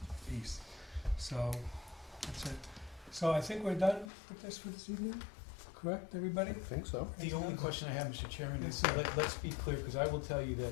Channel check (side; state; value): right; drops out; at 4.1 s